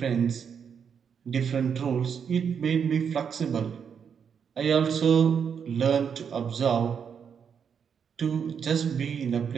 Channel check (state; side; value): quieter; left; 7.1 dB